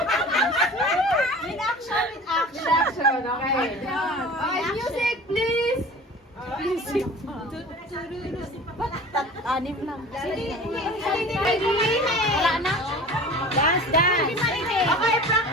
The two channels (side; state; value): both; normal; correlation 0.40